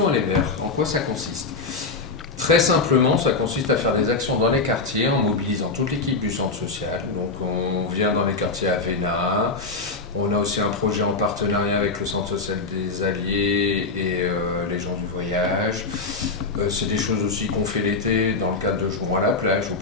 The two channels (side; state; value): right; quieter; 3.9 dB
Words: Aller Vers, en quoi ça consiste ? Très simplement, ça consiste à faire des actions dans les quartiers en mobilisant toute l'équipe du centre social. Donc on vient dans les quartiers Avena. On a aussi un projet en partenariat avec le centre social des Alliés et les gens du voyage. C'est des choses aussi qu'on fait l'été dans le cadre de Jouons à la plage ou